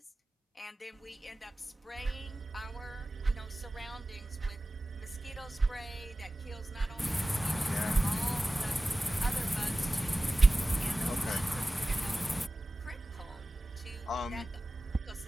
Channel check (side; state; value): both; normal; correlation 0.96